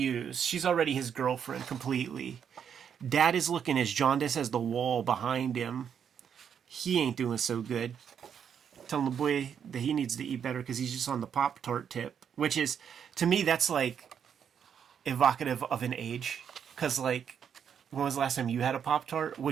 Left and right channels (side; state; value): left; quieter; 7.9 dB